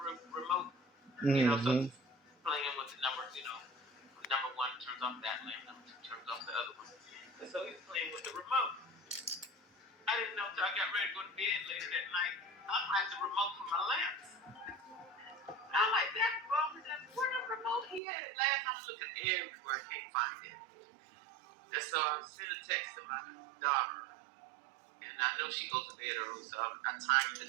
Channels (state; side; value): drops out; left; at 18.0 s